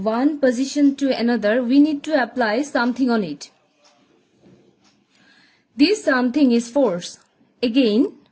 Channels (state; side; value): identical; both; correlation 1.00